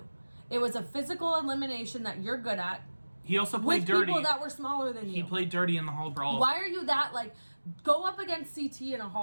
It was a physical elimination that you're good at. He also played dirty. With people that were smaller than you. He played dirty in the hall brawl. Why are you that, like, go up against CT in a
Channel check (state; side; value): inverted; both; correlation -1.00